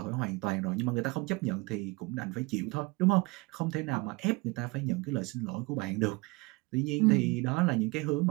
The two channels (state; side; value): quieter; left; 25.1 dB